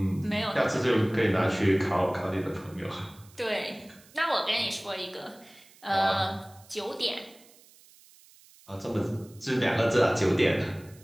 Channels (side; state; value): right; noise; hiss, 26 dB below the sound